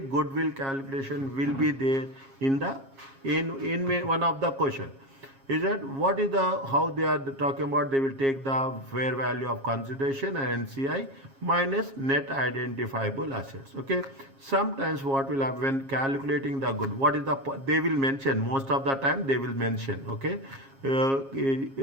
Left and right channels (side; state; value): left; late; 7.4 ms